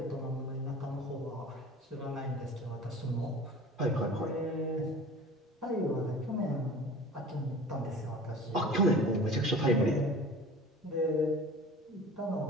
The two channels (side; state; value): both; normal; correlation 0.40